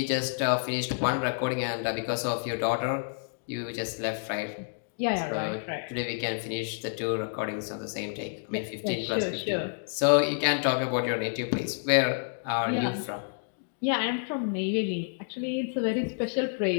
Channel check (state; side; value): silent; right; digital silence